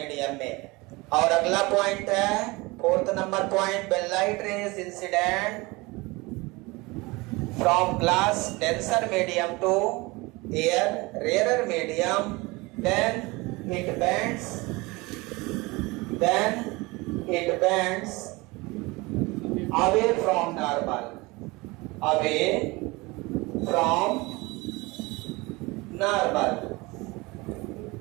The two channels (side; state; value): left; quieter; 23.6 dB